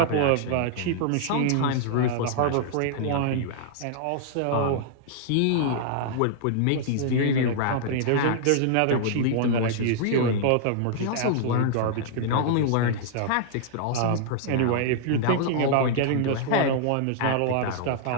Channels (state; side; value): different; both; correlation -0.01